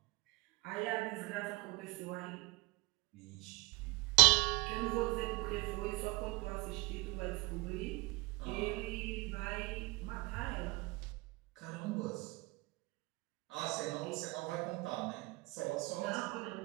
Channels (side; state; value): left; quieter; 24.8 dB